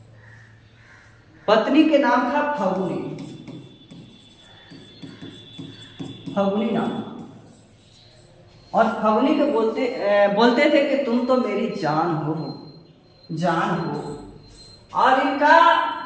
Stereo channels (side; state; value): both; identical; correlation 1.00